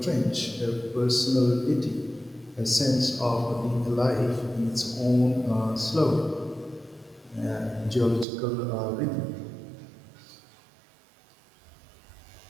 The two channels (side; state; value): left; drops out; at 8.2 s